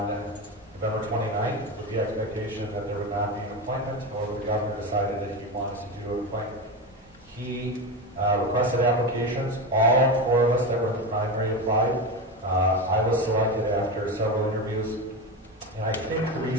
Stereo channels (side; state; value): both; normal; correlation 0.19